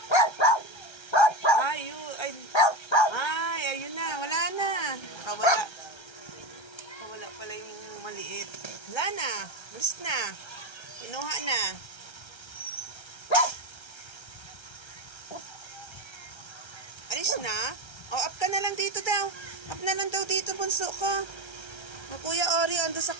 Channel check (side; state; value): right; late; 1.3 ms